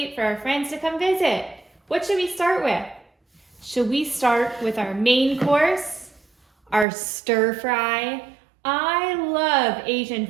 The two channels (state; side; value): drops out; left; at 6.9 s